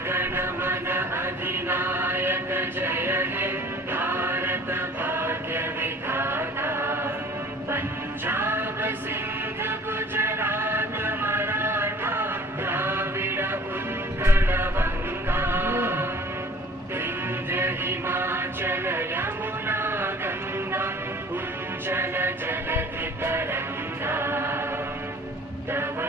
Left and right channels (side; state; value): both; normal; correlation 0.49